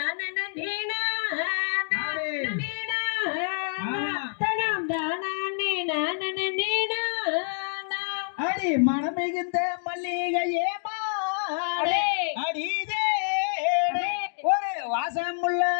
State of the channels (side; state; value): right; silent; digital silence